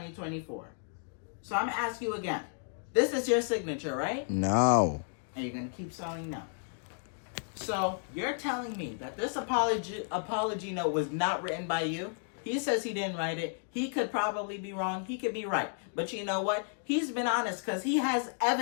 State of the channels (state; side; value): silent; right; 56 dB below the other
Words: So I'm gonna ask you again. This is your signature, right? No. And you're gonna keep saying no. So you're telling me that this apology note was not written by you? He says he didn't write it. He could probably be wrong. He could be right. But you know what? He's been honest because he has